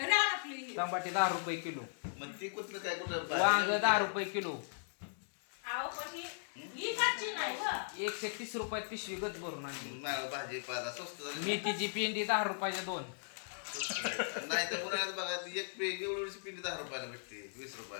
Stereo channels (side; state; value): right; silent; digital silence